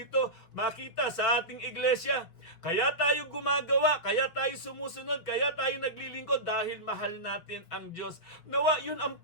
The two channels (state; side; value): late; right; 6.3 ms